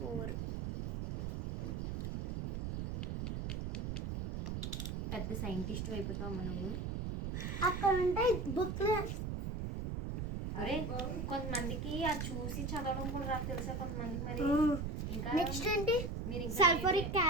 పెద్ద సైంటిస్ట్ అయిపోతావు నువ్వు. అక్కడ ఉంటే బుక్లో. అరే కొంతమందికి అది చూసి చదవడం కూడా రాదు తెలుసా కొంతమందికి. మరి ఇంకా నెక్స్ట్ ఏంటి? మీరు సల్ఫరిక్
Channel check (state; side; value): noise; right; rumble, 3 dB below the sound